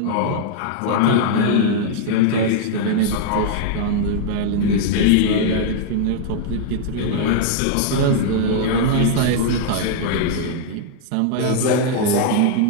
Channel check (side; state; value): both; different; correlation -0.01